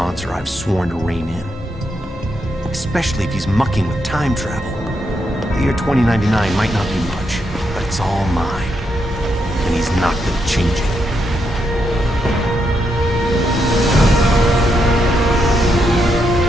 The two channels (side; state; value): both; normal; correlation 0.81